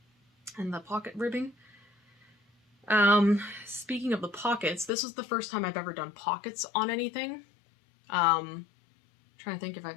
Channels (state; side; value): drops out; right; at 4.9 s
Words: and the pocket ribbing. Speaking of the pockets, this was the first time I've ever done pockets on anything. Trying to think if